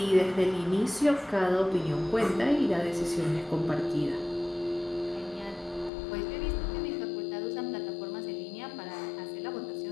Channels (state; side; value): drops out; right; at 5.9 s